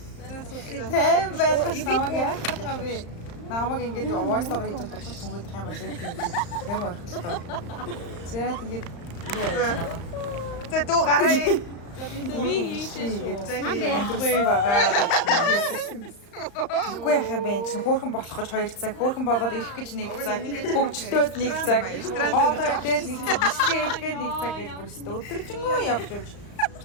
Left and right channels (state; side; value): late; right; 35 ms